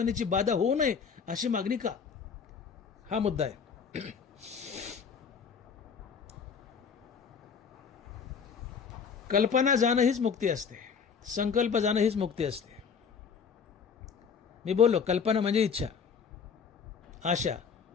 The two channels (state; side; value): quieter; right; 6.3 dB